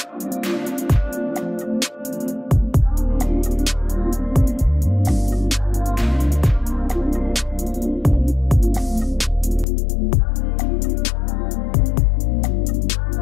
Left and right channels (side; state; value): right; drops out; at 9.7 s